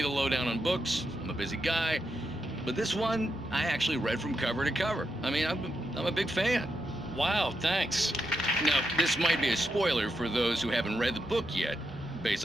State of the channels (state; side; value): normal; both; correlation 0.84